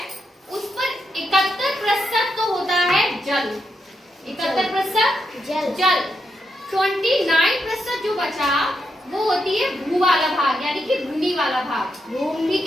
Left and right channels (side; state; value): both; normal; correlation 0.83